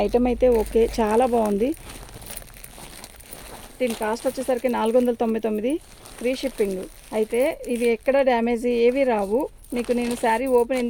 ఐటమ్ అయితే ఓకే, చాలా బాగుంది. దీని కాస్ట్ వచ్చేసరికి 499, ఫ్రీ షిప్పింగ్. అయితే ఇది ఎక్కడ డ్యామేజ్ ఏవి రావు. మీకు నేను శారీ ఓపెన్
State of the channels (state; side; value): identical; both; correlation 1.00